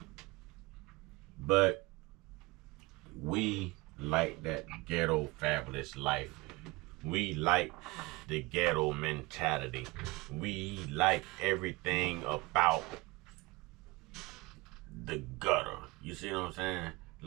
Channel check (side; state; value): left; quieter; 23.4 dB